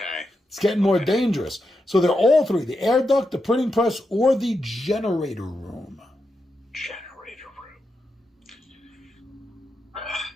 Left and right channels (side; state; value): both; normal; correlation 0.86